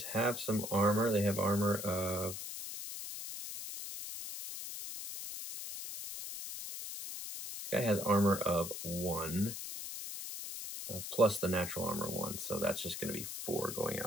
have some armor. They have armor of... This guy has armor of 1. Plus the natural armor 1, so that's just going to be 4 going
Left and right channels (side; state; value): left; noise; hiss, 7 dB below the sound